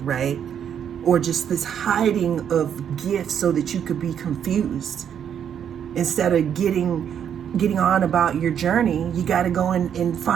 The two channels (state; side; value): quieter; left; 8.7 dB